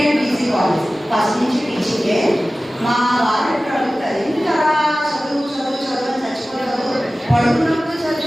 and PG college first నుంచి టీచింగే. మా వాళ్ళు ఎప్పుడు అడుగుతారు ఎందుకు అలా చదువు చదువు చదువు అని చచ్చిపోలేదు. పడుకున్నప్పుడు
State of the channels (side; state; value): both; normal; correlation 0.96